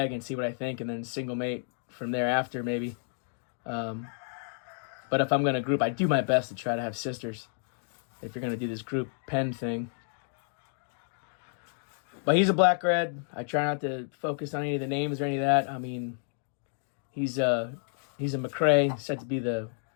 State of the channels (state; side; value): silent; right; digital silence